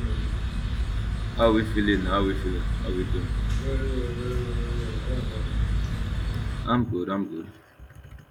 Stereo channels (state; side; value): identical; both; correlation 1.00